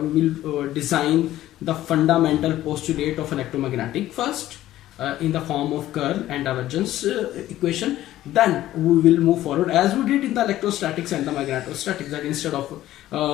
will design the fundamental postulate of electromagnetic first in the form of curl and divergence equation. Then we will move forward as we did in the electrostatics and the magnetostatics, that instead of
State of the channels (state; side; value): quieter; right; 14.2 dB